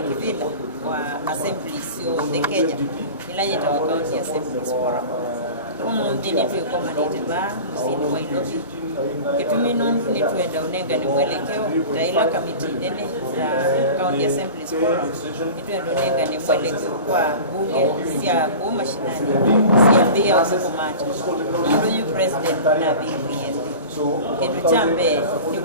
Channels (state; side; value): inverted; both; correlation -0.35